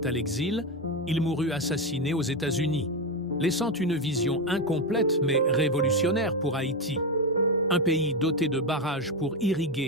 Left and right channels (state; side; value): normal; both; correlation 0.12